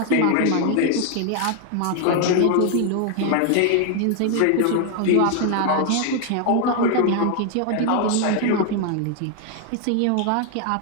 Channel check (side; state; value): both; different; correlation 0.00